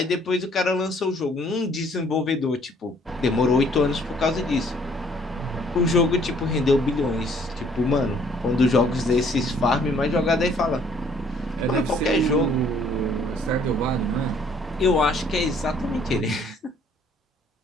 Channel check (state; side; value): normal; both; correlation 0.61